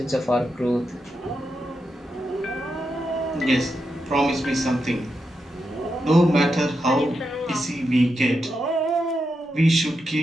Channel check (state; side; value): normal; both; correlation 0.86